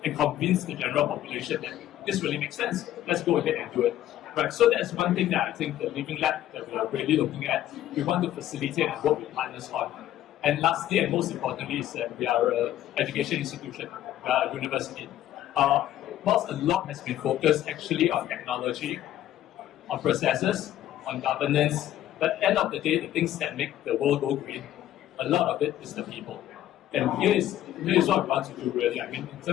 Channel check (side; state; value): right; quieter; 12.8 dB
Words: and convince the general population that this really makes sense. Let's go ahead and do it. Right. So that's one thing that I think the living lab that we are really looking at, we want to facilitate and work with partners on. And lastly, and most importantly, is that we are an education institution, we are a university. Whilst a lot has been focused actually on technology, on processes, on governance, but at the end of the day, the things that make the world go green, a lot of it is the people. And here is what we want to do really. I mean, in